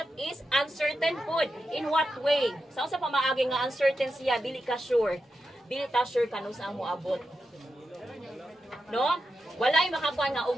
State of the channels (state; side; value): normal; both; correlation 0.88